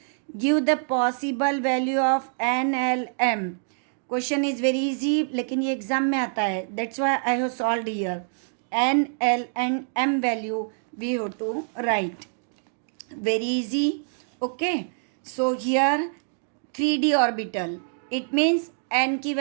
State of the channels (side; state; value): left; silent; digital silence